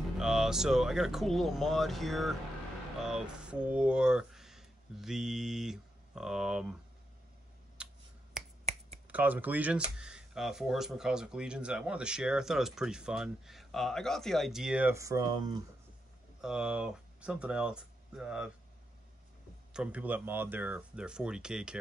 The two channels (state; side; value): normal; both; correlation 0.84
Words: So I got a cool little mod here for the Cosmic Legions, 4 Horsemen Cosmic Legions. I wanted to share. I thought it was pretty fun. I got the idea from something else, from people that mod their 40K